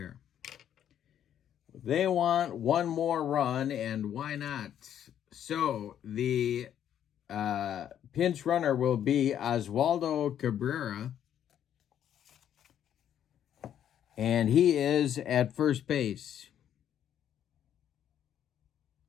They want 1 more run, and why not? So the pinch runner will be Oswaldo Cabrera, and he is at first base.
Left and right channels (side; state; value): right; quieter; 10.0 dB